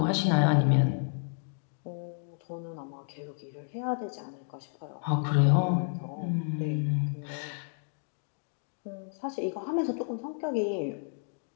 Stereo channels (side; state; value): right; silent; digital silence